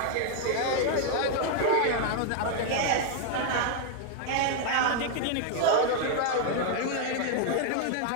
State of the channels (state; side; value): different; both; correlation 0.00